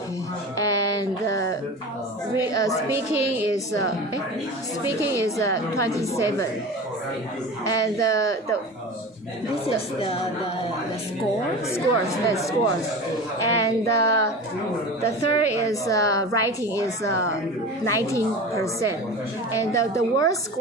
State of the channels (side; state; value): both; normal; correlation 0.32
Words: and speaking is 27, and this is the scores, and the third is writing is 19%, and the word